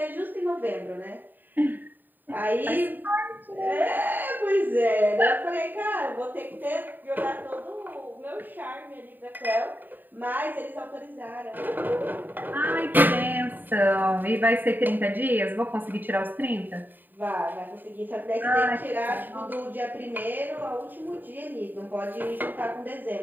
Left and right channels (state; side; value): late; left; 0.090 ms